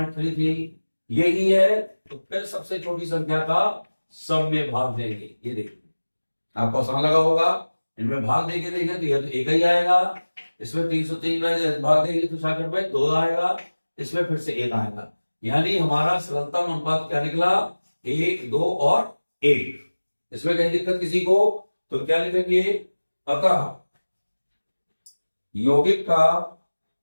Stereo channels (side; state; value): both; inverted; correlation -1.00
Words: यही है। तो फिर सबसे छोटी संख्या का सब में भाग देंगे। ये देखिए आपको आसान लगा होगा, इनमें भाग देके देंगे तो यह तो एक ही आएगा। इसमें 303 में भाग देंगे तो 66 में 2 आएगा, इसमें फिर से 1 आएगा। यानी हमारा सरलतम अनुपात क्या निकला, 1, 2 और 1। इसमें कहीं दिक्कत किसी को तो क्या लिखेंगे, अतः यौगिक का,